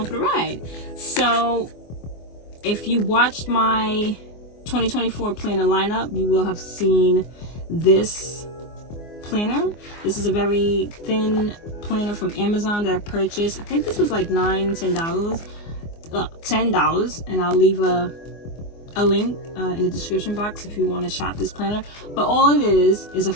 for the ride. So if you watched my 2024 planner lineup, you will have seen this planner. This is a very thin planner from Amazon that I purchased. I think this was like $10, and I'll leave a link in the description box if you want to shop this planner. But all it is a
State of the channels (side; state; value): right; late; 24 ms